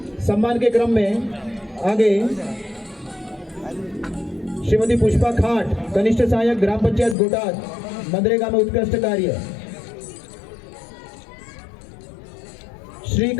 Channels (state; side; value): drops out; right; at 7.2 s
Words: सम्मान के क्रम में आगे श्रीमती पुष्पा खाट, कनिष्ठ सहायक ग्राम पंचायत गोटाद, मनरेगा में उत्कृष्ट कार्य। श्री